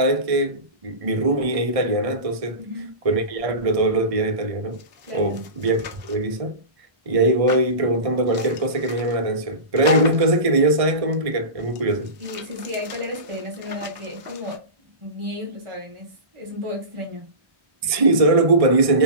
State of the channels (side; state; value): left; late; 1.6 ms